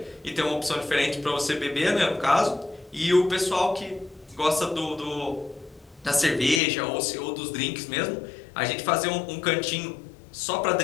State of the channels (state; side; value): drops out; right; at 6.6 s